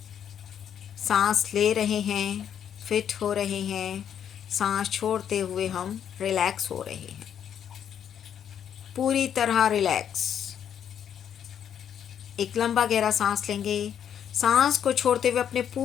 सांस ले रहे हैं, फिट हो रहे हैं, सांस छोड़ते हुए हम रिलैक्स हो रहे हैं, पूरी तरह रिलैक्स। एक लंबा गहरा सांस लेंगे। सांस को छोड़ते हुए अपने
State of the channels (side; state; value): right; quieter; 9.0 dB